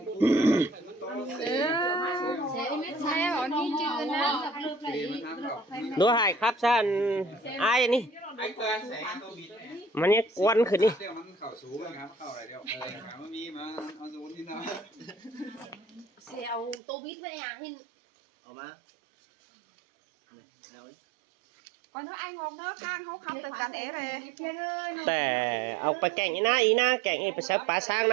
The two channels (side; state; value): left; drops out; at 16.8 s